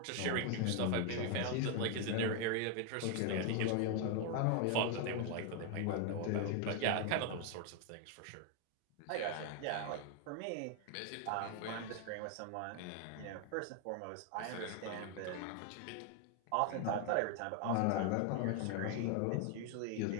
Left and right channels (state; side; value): different; both; correlation 0.01